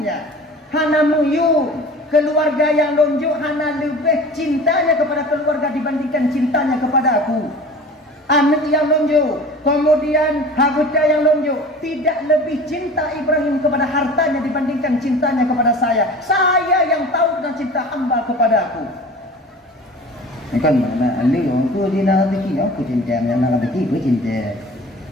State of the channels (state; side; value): normal; both; correlation 0.40